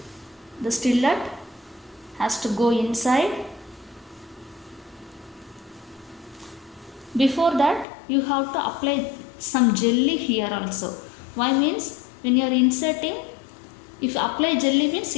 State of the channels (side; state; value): right; drops out; at 7.9 s